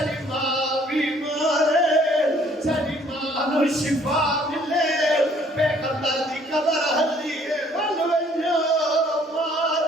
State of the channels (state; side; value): normal; both; correlation 0.60